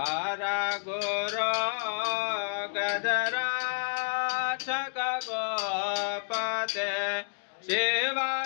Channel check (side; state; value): right; silent; digital silence